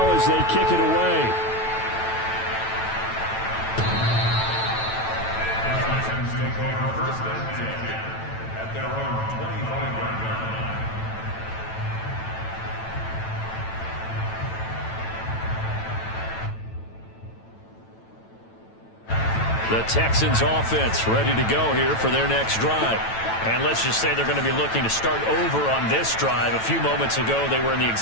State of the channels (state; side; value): late; right; 9.1 ms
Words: as they kick it away. The Texans offense ready to go here for their next drive. And let's just say they're going to be looking to start over on this drive. A few moments ago, they were in the